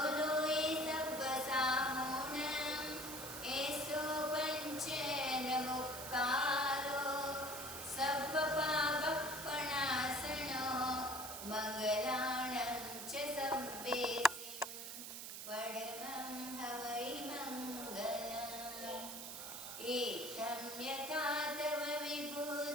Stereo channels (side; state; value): right; noise; hiss, 8 dB below the sound